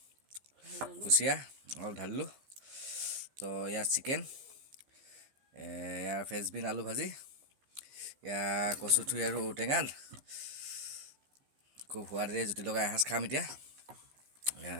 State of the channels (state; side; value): late; left; 15 ms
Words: কুচিয়া অলপ ঢালিলোঁ তো ইয়াত চিকেন ইয়াৰ ফ্ৰেঞ্চবিন আলু ভাজি ইয়াৰ কচুথুৰি আৰু ঔটেঙাত খুব সোৱাদেৰে জুতি লগাই এসাঁজ খাম এতিয়া